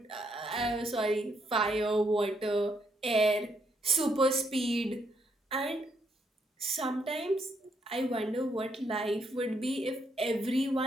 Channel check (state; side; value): normal; both; correlation 0.75